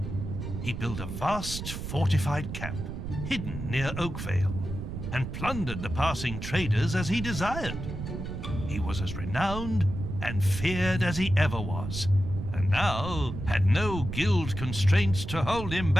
He built a vast fortified camp, hidden near Oakvale, and plundered the passing traders as he desired. He was as renowned and feared as he ever was, and now had no guild constraints to hold him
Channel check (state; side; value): noise; right; rumble, 6 dB below the sound